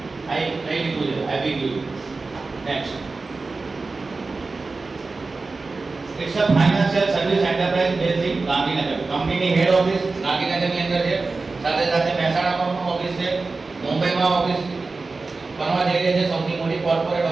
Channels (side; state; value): left; quieter; 3.8 dB